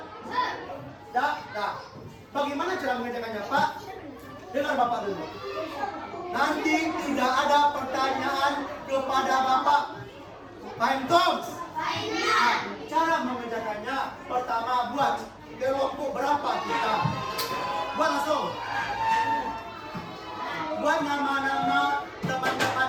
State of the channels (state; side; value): identical; both; correlation 1.00